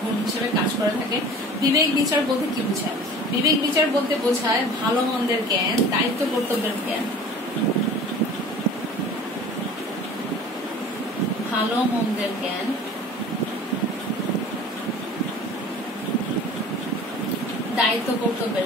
গুণ হিসেবে কাজ করে থাকে। বিবেক বিচার বলতে কি বোঝায়? বিবেক বিচার বলতে বোঝায় ভালো মন্দের জ্ঞান, দায়িত্ব কর্তব্যের জ্ঞান, ভালো মন্দের জ্ঞান, দায়িত্ব কর্তব্যের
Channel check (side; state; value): both; normal; correlation 0.42